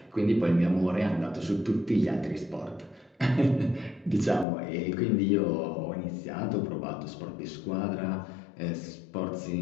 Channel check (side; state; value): right; drops out; at 4.5 s